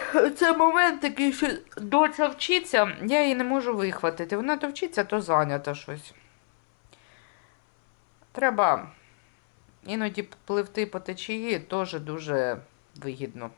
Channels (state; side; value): silent; right; 60 dB below the other